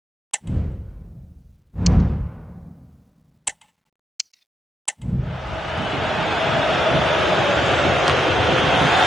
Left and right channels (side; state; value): both; normal; correlation 0.84